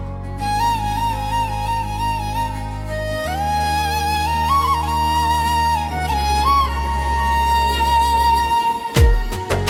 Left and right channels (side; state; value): both; identical; correlation 1.00